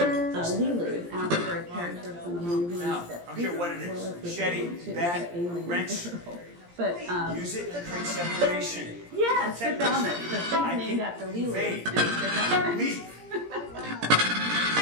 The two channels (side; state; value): left; late; 17 ms